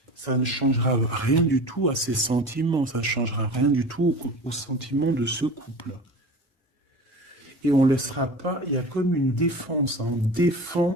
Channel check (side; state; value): both; normal; correlation 0.36